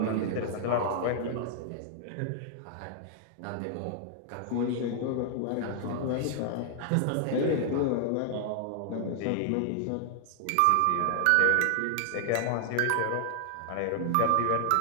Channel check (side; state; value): both; different; correlation -0.01